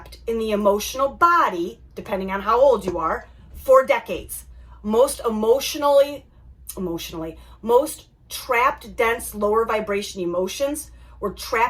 in the emotional body, depending on how old you are, for decades. Most trapped, dense, lower vibration emotions were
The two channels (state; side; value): identical; both; correlation 1.00